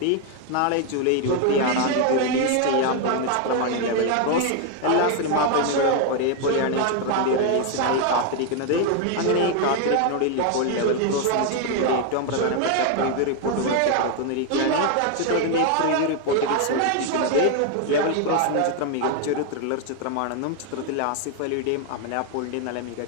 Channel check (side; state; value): both; different; correlation 0.01